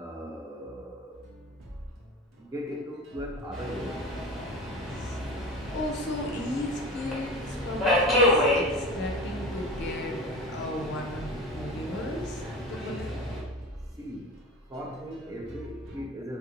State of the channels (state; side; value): normal; both; correlation 0.33